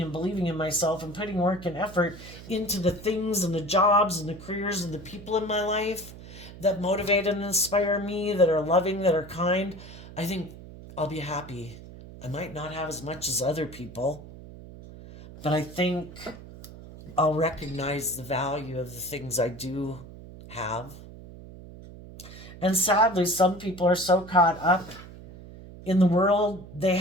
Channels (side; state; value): right; noise; hum, 16 dB below the sound